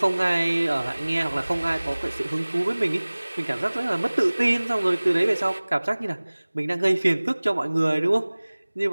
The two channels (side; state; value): both; inverted; correlation -1.00